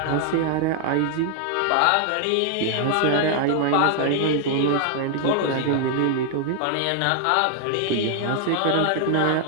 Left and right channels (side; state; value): both; different; correlation 0.00